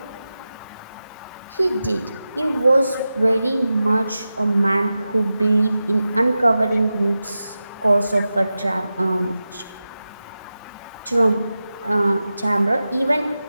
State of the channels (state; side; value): inverted; both; correlation -0.93